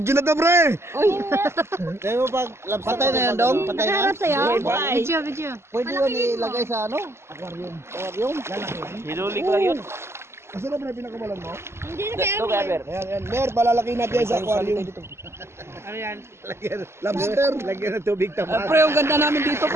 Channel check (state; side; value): late; left; 0.12 ms